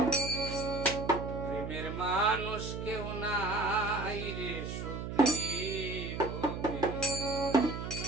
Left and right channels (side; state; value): right; noise; hum, 6 dB below the sound